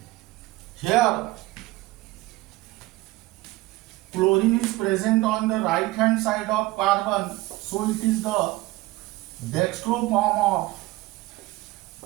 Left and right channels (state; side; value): quieter; left; 19.2 dB